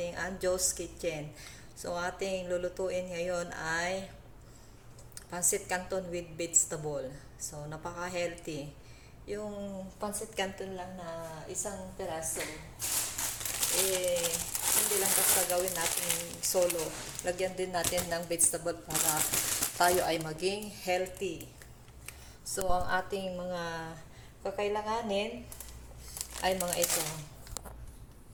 Anjo's Kitchen. So, ating lulutuin ngayon ay pancit canton with vegetable. So, napaka-healthy. Yung pancit canton lang na isang peraso, hindi lang basta gawin natin solo. Lagyan din natin ng vegetable para tayo ay maging healthy. So, ang ating mga kakailanganin ay mga ito.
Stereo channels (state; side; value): identical; both; correlation 1.00